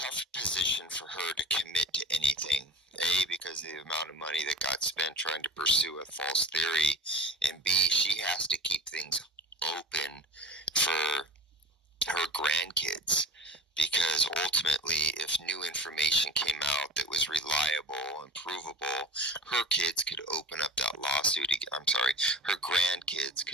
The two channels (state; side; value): normal; both; correlation 0.36